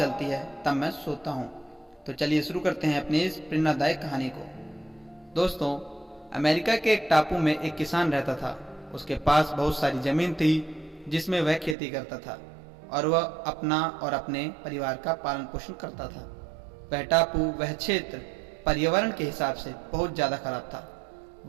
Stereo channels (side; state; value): left; drops out; at 11.8 s